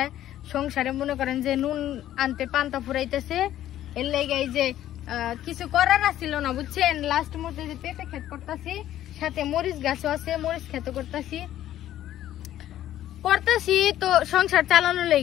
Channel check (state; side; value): quieter; right; 12.6 dB